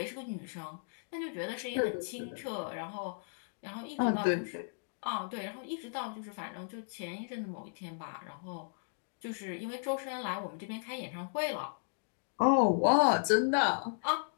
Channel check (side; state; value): right; silent; digital silence